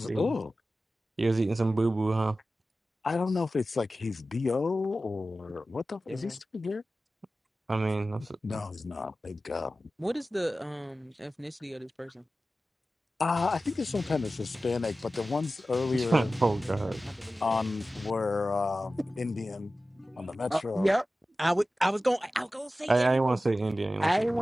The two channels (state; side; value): normal; both; correlation 0.95